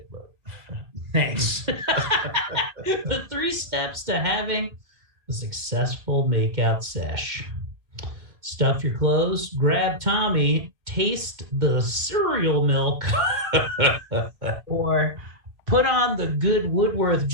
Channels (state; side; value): late; left; 2.1 ms